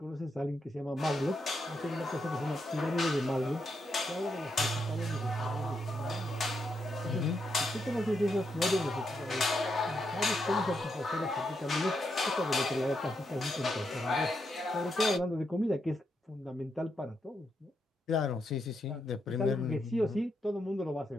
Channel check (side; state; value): both; normal; correlation 0.82